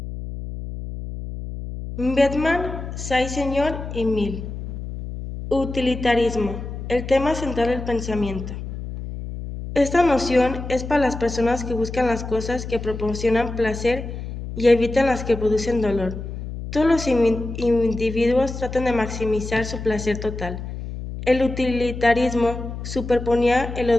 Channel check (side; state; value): left; noise; hum, 8 dB below the sound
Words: Bedman, Saint-Señor y Mill. Utilitarismo, el tema central del pensamiento. Esta noción es para las personas que buscan las cosas que proporcionan placer y evitan las que producen dolor. Todos los individuos tratan de maximizar su placer total. El utilitarismo superponía el